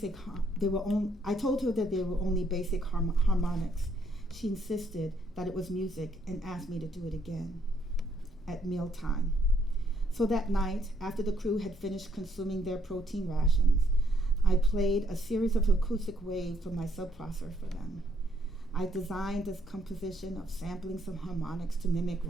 I told her that they were only basic harmonics. She insisted that it was music and asked me to do it again at mealtime. So that night, after the crew had finished consuming their protein rations, I played a series of acoustic waves from my subprocessor for them. I designed this composition of sampling some harmonics to mimic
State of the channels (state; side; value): normal; both; correlation 0.70